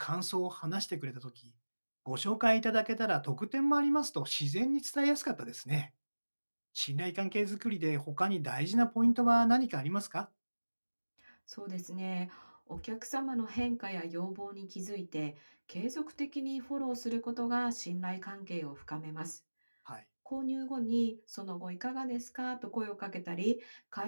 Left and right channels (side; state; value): both; inverted; correlation -1.00